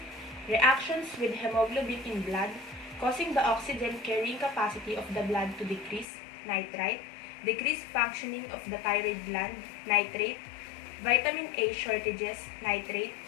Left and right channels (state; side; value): drops out; right; at 6.1 s